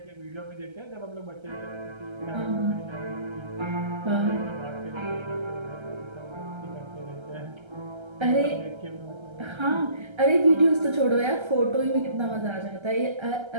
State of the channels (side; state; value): left; late; 1.3 ms